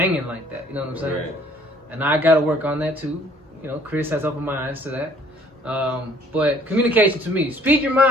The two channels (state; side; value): normal; both; correlation 0.58